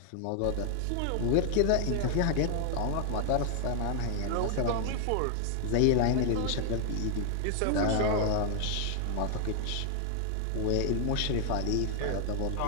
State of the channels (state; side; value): different; both; correlation 0.00